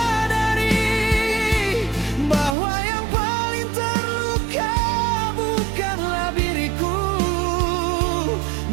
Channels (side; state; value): left; drops out; at 2.6 s